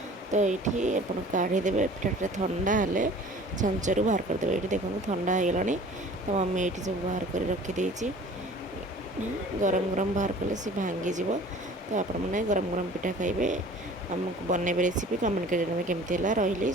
तो ये आप काढ़ीदेवे पिठाटा ठंडा हेल्ले छांचरू बाहर करदे ये देखो ठंडा हो गला तो मम्मी ये सब बाहर कर रखीदे गरम गरम बाहर कले सी भांगीज तो आपण मैंने गरम गरम पिठा खाइबे ଆମକୁ ବନେଇବେ ରେସିପି କମେଣ୍ଟ କରି ଜଣାଇବେ କେମିତି ହେଲା। ରହିଲି,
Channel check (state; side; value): normal; both; correlation 0.46